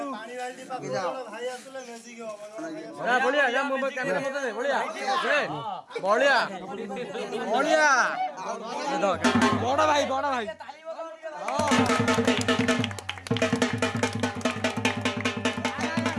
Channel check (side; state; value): both; identical; correlation 1.00